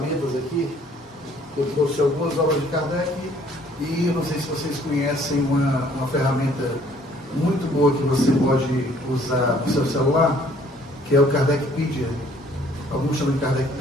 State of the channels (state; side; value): normal; both; correlation 0.59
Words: aqui. Eu trouxe algumas obras de Kardec e eu não sei se vocês conhecem uma ferramenta muito boa que você pode usar no seu celular, que é o Kardecpedia. Alguns chamam de